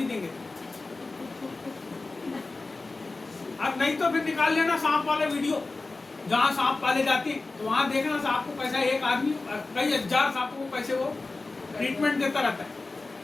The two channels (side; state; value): right; quieter; 3.5 dB